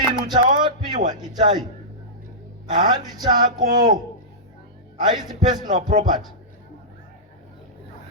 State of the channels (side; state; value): both; normal; correlation -0.16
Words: chawapiwa Itai handi chako, haisi personal property,